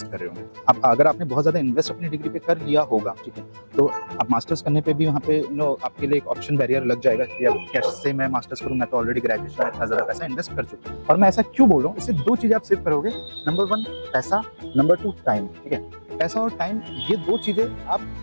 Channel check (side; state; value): both; inverted; correlation -1.00